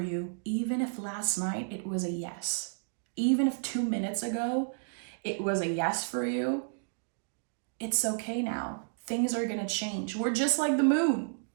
even if last night it was a yes. Even if 2 minutes ago it was a yes for you, it's okay now. Things are going to change. We're just like the moon.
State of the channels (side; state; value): left; silent; digital silence